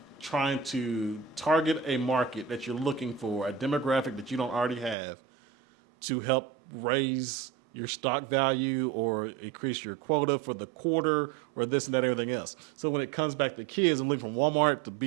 trying to target a market that you're looking for, a demographic that you don't already have, to help raise your stock value or increase your quota for the quarter or this and that, everything else. So when it comes back to kids, I'm looking from Walmart to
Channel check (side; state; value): left; drops out; at 5.0 s